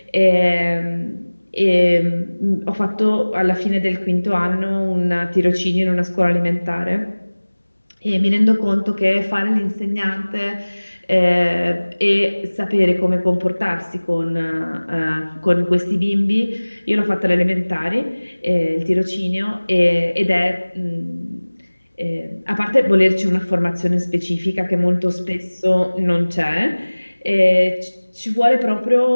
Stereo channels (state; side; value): inverted; both; correlation -1.00